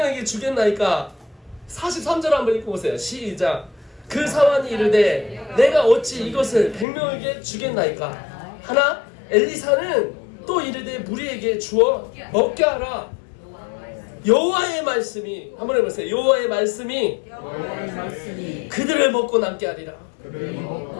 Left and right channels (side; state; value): right; drops out; at 6.9 s